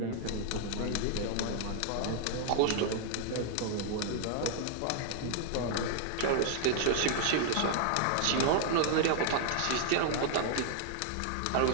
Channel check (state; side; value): different; both; correlation 0.00